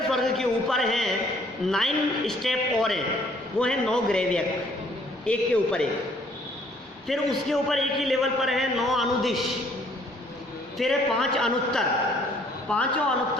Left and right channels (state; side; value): normal; both; correlation 0.62